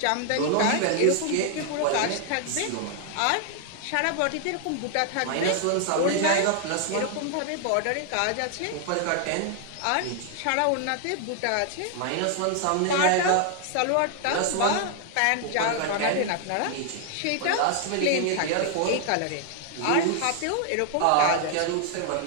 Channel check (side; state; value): both; different; correlation 0.00